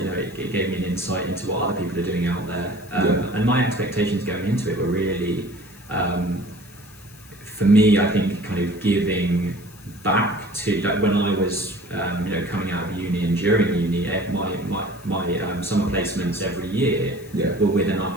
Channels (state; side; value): noise; left; hiss, 23 dB below the sound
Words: gave me an insight into what other people are doing out there, and my expectations going into it were really, for me, I think kind of giving back to when I was coming out of uni and during uni, my summer placements every year were with an